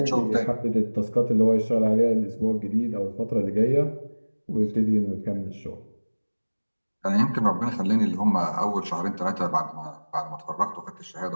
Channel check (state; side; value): inverted; both; correlation -1.00